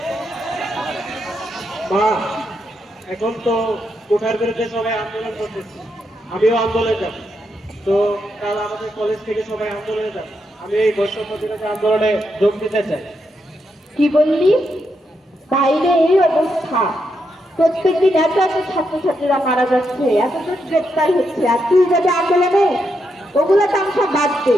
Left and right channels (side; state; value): both; normal; correlation 0.82